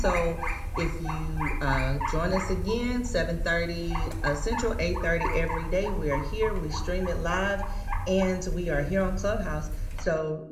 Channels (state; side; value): identical; both; correlation 1.00